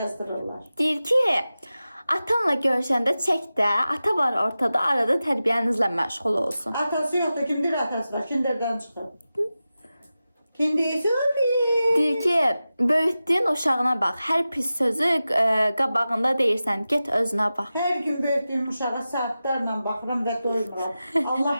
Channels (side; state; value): both; inverted; correlation -0.94